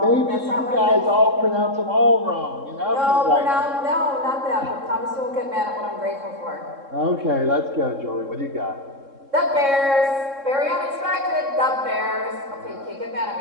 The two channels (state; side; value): late; left; 3.7 ms